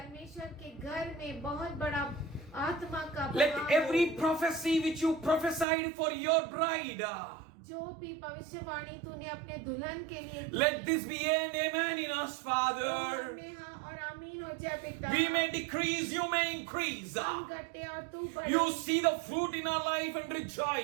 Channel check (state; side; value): drops out; left; at 5.7 s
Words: के घर में बहुत बड़ा आत्मा का Let बहाव every हो। prophecy which you prophesied for your bride, जो भी भविष्यवाणी तूने अपने दुल्हन के लिए की, let this be an amen in us, Father. में हाँ और आमीन हो जाए पिता। We may decrease, you may increase. हम घटे और तू बढ़े। You see the fruit in our life and